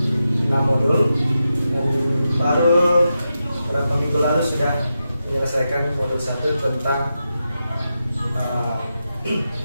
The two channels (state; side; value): inverted; both; correlation -0.89